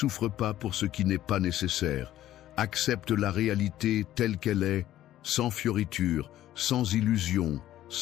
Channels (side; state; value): right; quieter; 13.2 dB